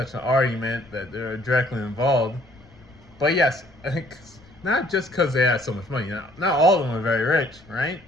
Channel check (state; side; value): noise; left; rumble, 27 dB below the sound